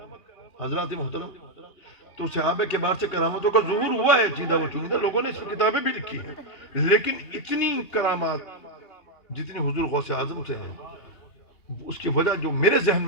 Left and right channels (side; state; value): right; late; 3.2 ms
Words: حضرات محترم، تو صحابہ کے بعد سے کرامتوں کا ظہور ہوا ہے، چیدہ و چنیدہ لوگوں نے اس میں کتابیں بھی لکھی ہیں، لیکن اتنی کرامات جتنی حضور غوث اعظم سے ہیں، اس کی وجہ جو میرے ذہن